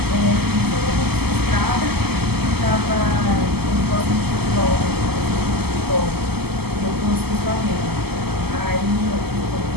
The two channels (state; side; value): late; left; 0.96 ms